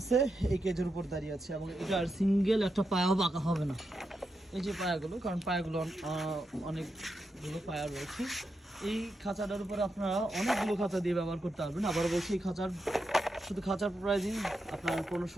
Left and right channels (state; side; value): normal; both; correlation 0.86